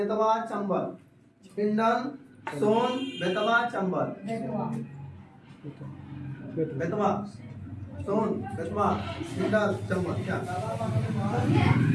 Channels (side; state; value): both; identical; correlation 1.00